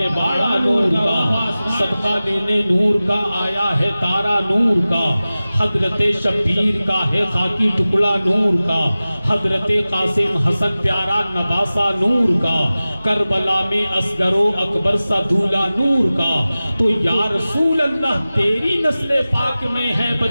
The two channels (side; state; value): both; inverted; correlation -0.96